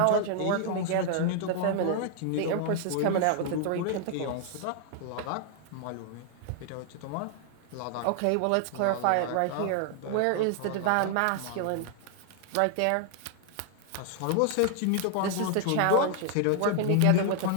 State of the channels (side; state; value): both; different; correlation 0.00